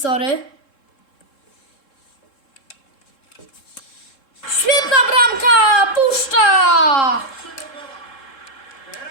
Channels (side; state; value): right; late; 3.7 ms